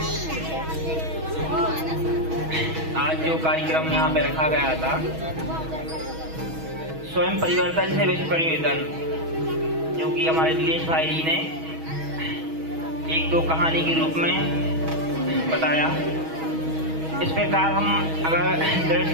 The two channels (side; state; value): left; late; 6.2 ms